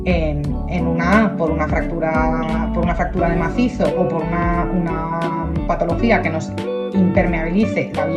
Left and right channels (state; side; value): identical; both; correlation 1.00